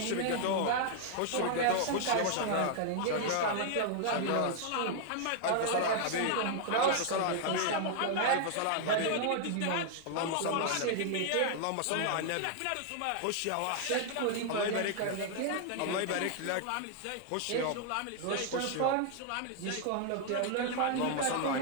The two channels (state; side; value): different; both; correlation 0.00